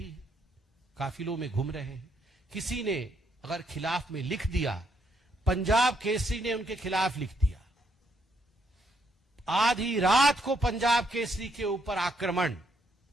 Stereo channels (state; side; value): normal; both; correlation 0.74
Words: है, काफिलों में घूम रहे हैं। किसी ने अगर खिलाफ में लिख दिया, पंजाब केसरी ने उनके खिलाफ लिख दिया, आधी रात को पंजाब केसरी के ऊपर आक्रमण,